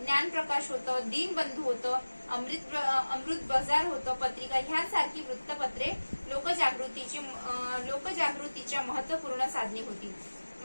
होतं, दीनबंधू होतं, अमृत बाजार होतं, पत्रिका ह्यासारखी वृत्तपत्रे लोकजागृतीच्या महत्वपूर्ण साधने होती.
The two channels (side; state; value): both; inverted; correlation -1.00